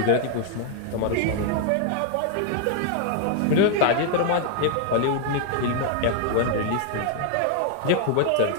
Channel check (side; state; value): both; different; correlation 0.00